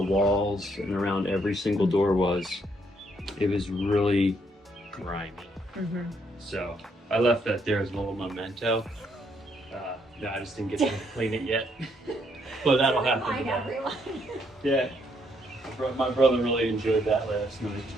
walls and around every single door was. It was really grimy. So I left that there as a little memento. No, I just didn't get to clean it yet. But that'll happen Remind today. everyone. Yeah. My brother really enjoyed that last night.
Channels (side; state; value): both; normal; correlation 0.72